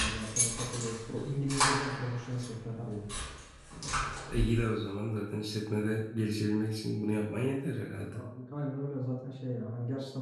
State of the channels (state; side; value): identical; both; correlation 1.00